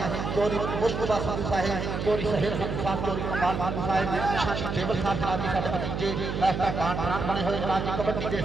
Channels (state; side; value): noise; right; hum, 3 dB below the sound